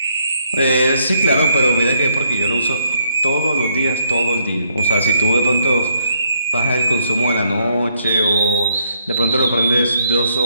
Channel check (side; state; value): both; inverted; correlation -0.73